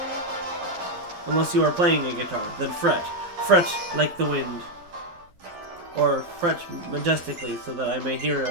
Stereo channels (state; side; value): late; left; 12 ms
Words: Unless you are playing a guitar, then fret. Fret like the wind. Or fret majestically so that I may hear